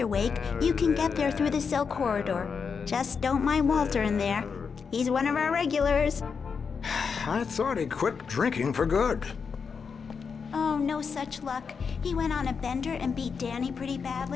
Wake. You can get there through the cell corridor. Just don't mind Walter in there. He's one of our regulars. I thought he quit drinking for good. Oh, no such luck. He went on a bender and beat Danny pretty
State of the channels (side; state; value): right; quieter; 5.8 dB